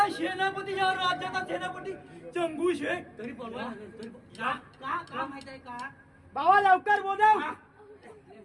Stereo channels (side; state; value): both; identical; correlation 1.00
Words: सेनापती या राज्याचा सेनापती चंगू शेख तरी बोलवा तरी का का का माहित आहे का बाबा लवकर बोलव